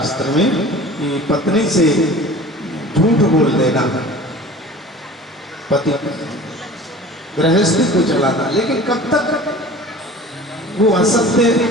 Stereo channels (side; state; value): both; normal; correlation 0.42